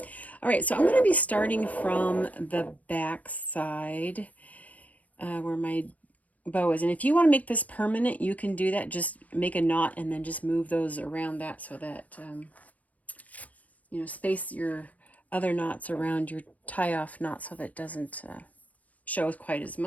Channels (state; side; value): late; right; 0.073 ms